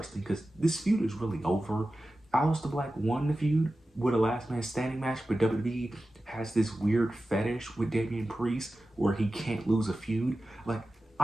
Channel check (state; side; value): normal; both; correlation 0.94